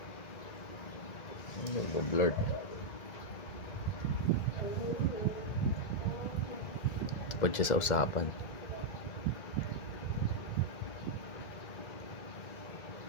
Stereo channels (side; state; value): right; late; 2.0 ms